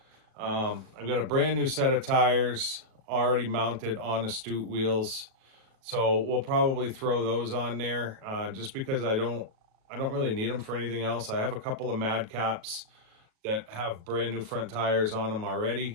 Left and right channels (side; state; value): left; late; 37 ms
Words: I've got a brand new set of tires already mounted on Astute wheels. So we'll probably throw those on there, just because I don't really need them for anything else. I have a couple of Madcaps that have brand new front tires on them